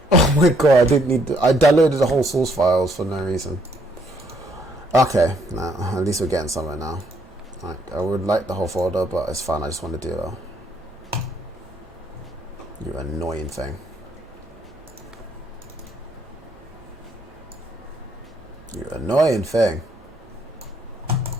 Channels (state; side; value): normal; both; correlation 0.69